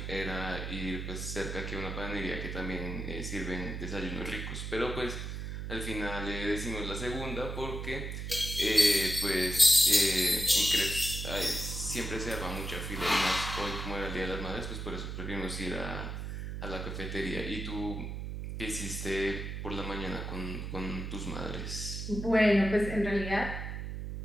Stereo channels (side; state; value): right; noise; hum, 5 dB below the sound